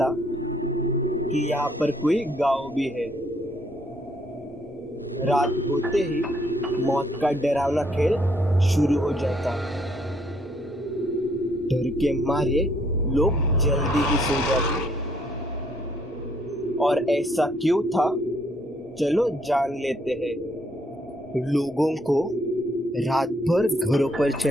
कि यहाँ पर कोई गांव भी है। रात होते ही मौत का डरावना खेल शुरू हो जाता। डर के मारे लोग जल्दी ही सो जाते। और ऐसा क्यों था, चलो जान लेते हैं। लोगों को रात भर घरों पर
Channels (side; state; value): both; normal; correlation 0.69